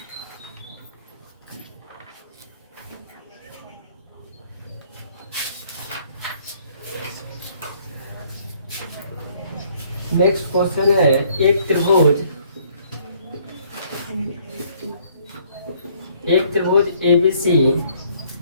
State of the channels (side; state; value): both; inverted; correlation -0.63